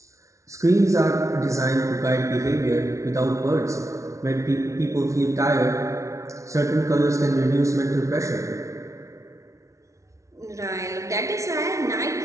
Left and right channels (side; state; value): left; late; 0.14 ms